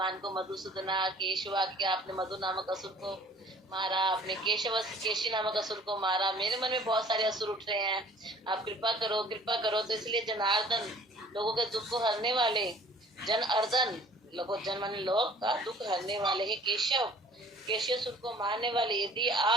को मधुसूदना केशवा, क्या आपने मधु नामक असुर को मारा, आपने केशी नामक असुर को मारा, मेरे मन में बहुत सारे असुर उठ रहे हैं, आप कृपा करो कृपा करो। तो इसलिए जनार्दन, लोगों के दुख को हरने वाले, जन अर्दन, जन मन लोग का दुख हरने वाले है केशव, केशव को मारने वाले। यदि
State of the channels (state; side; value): normal; both; correlation 0.52